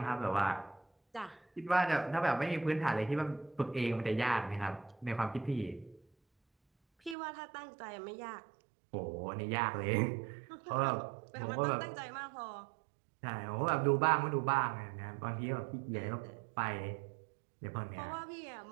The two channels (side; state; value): left; drops out; at 7.2 s